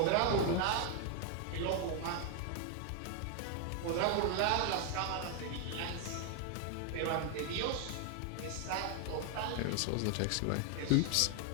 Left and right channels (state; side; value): different; both; correlation 0.00